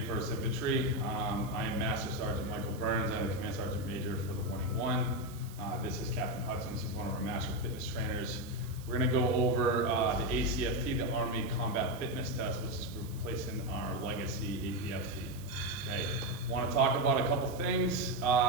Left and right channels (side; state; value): right; noise; hiss, 19 dB below the sound